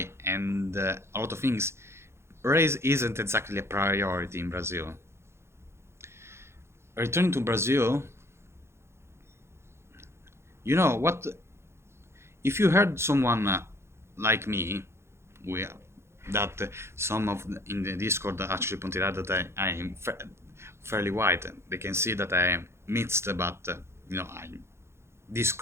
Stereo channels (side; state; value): left; late; 0.13 ms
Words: and a lot of things. Race isn't exactly a priority in Brazil. Returning to Brazil, you know what? If you heard someone like me, we, that some of in the Discord actually pointed out that I am fairly white. They can see that I am mixed, but I'm this